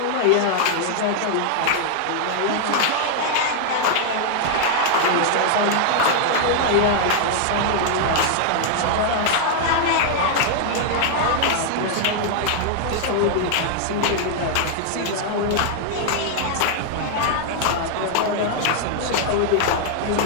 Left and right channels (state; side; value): different; both; correlation 0.00